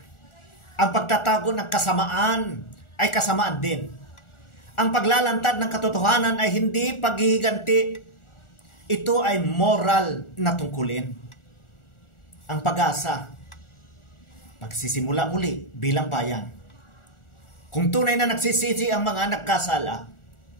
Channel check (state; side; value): late; right; 1.4 ms